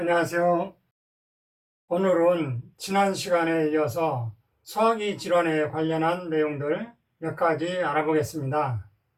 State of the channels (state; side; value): identical; both; correlation 1.00